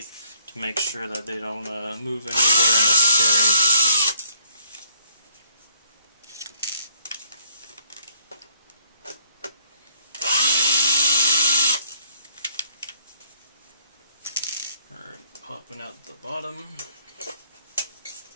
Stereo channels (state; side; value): inverted; both; correlation -0.62